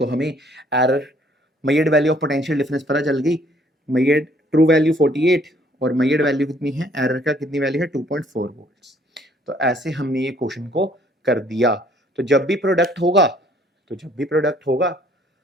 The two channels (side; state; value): both; normal; correlation 0.62